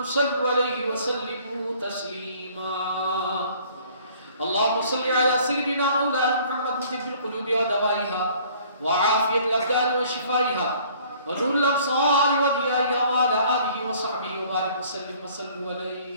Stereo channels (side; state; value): both; inverted; correlation -0.56